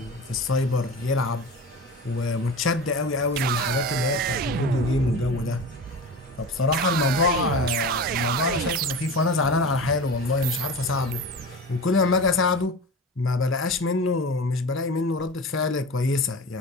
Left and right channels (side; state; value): both; normal; correlation 0.31